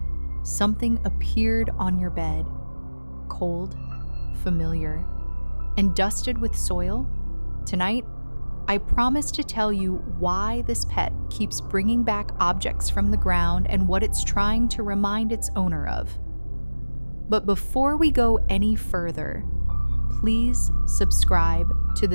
something appeared on your bed, cold, familiar, and dusted with soil? Tonight, I promise to tell you why this pet keeps bringing back objects from the ground and what it's trying to remind its owner of. But before we go any further, please subscribe to the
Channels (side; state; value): both; inverted; correlation -1.00